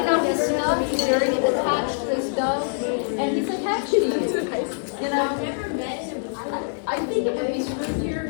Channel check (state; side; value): silent; right; 58 dB below the other